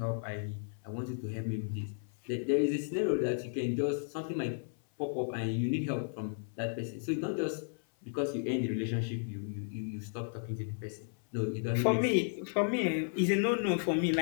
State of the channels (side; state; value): right; silent; 55 dB below the other